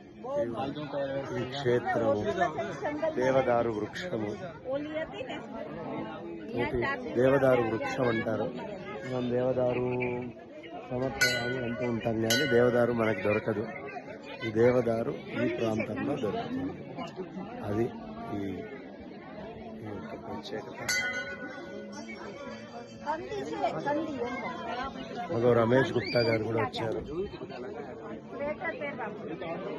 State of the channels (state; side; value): identical; both; correlation 1.00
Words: ఈ క్షేత్రము, దేవదారు వృక్షము. దేవదారు వృక్షం అంటారు. మనం దేవదారు సమర్పయాలు అంటూ ఉంటాం, కానీ దేవదారు మనకు దొరకదు. ఈ దేవదారు ఈ ప్రాంతంలో దొరుకుతుంది. అది ఈ యొక్క ప్రత్యేకత. మగో రమేష్ గుప్తా గారు కూడా వచ్చారు.